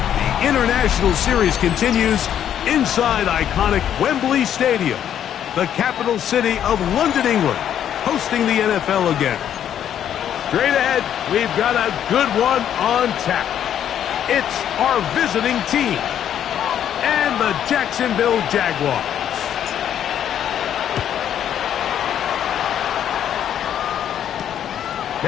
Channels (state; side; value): quieter; right; 9.9 dB